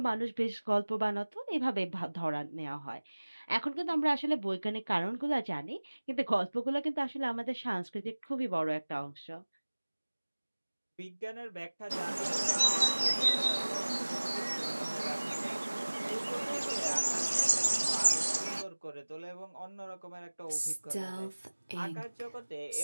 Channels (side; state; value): both; inverted; correlation -1.00